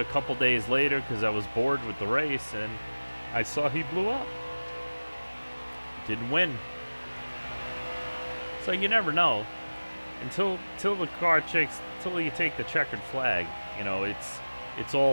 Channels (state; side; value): inverted; both; correlation -1.00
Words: couple days later because I was bored with the race, and I saw he blew up. Didn't win. So you never know until the car checks, until you take the checkered flag. You know, it's